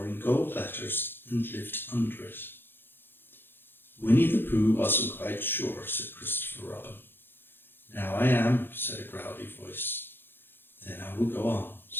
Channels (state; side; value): late; right; 0.10 ms